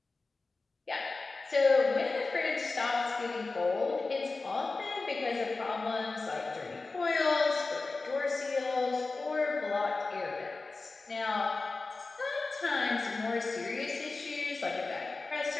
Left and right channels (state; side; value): quieter; right; 3.7 dB